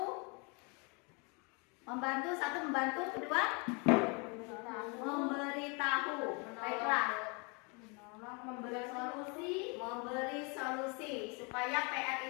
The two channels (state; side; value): quieter; right; 32.4 dB